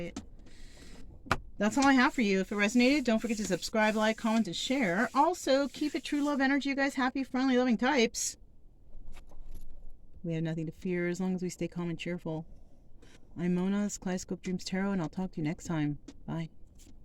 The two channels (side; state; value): both; identical; correlation 1.00